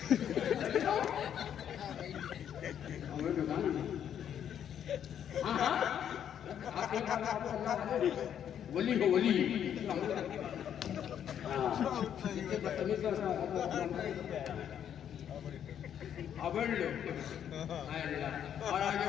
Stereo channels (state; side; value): quieter; right; 9.3 dB